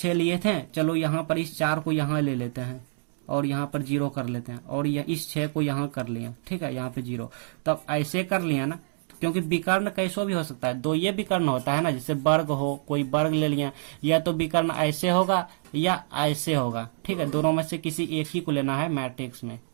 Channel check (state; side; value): silent; left; digital silence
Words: लिए थे, चलो यहाँ पर इस 4 को यहाँ ले लेते हैं और यहाँ पर 0 कर लेते हैं, और इस 6 को यहाँ कर लिया, ठीक है, यहाँ पे 0। तब ऐसे कर लिया ना, क्योंकि विकर्ण कैसो भी हो सकता है, 2 ये विकर्ण होता है ना, जैसे वर्ग हो, कोई वर्ग ले लिया, या तो विकर्ण ऐसे होगा या ऐसे होगा, ठीक है, दोनों में से किसी एक ही को लेना है मैट्रिक्स में,